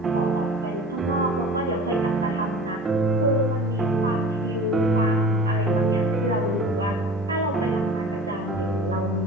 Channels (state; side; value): normal; both; correlation 0.41